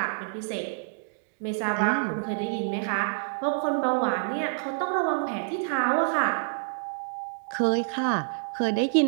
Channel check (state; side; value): silent; left; digital silence